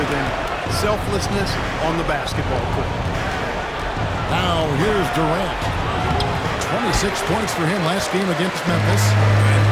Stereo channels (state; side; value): identical; both; correlation 1.00